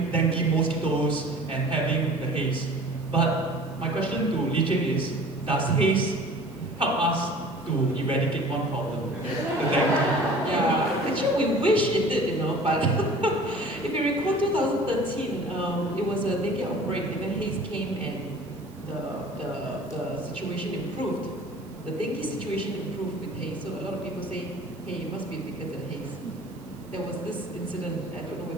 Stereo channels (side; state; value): right; noise; hiss, 27 dB below the sound